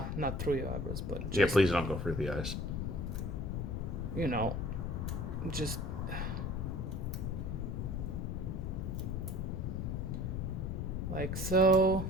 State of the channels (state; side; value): noise; left; rumble, 2 dB below the sound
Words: not through your eyebrows, but just, Yeah, please don't go through the eyes. Just like so,